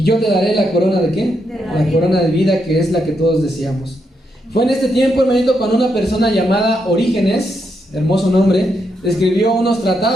yo te daré la corona ¿de qué? La corona de vida, que es la que todos deseamos. Fue en este tiempo, hermanito, cuando una persona llamada Orígenes, hermoso nombre, escribió unos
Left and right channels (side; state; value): both; normal; correlation 0.80